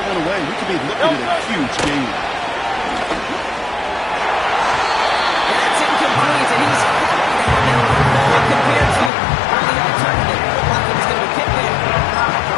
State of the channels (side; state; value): right; drops out; at 9.1 s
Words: one away. We could be looking at a huge game. That's incomplete, and he's happy to have it compared to the alternative. Like it's going to be kicked there.